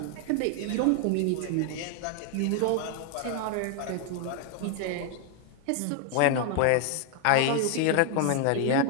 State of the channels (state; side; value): different; both; correlation 0.00